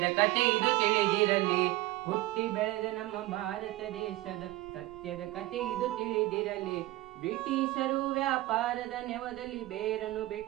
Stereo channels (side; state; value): left; quieter; 18.1 dB